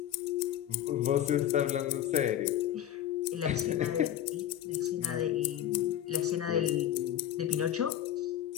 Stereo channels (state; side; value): quieter; right; 11.5 dB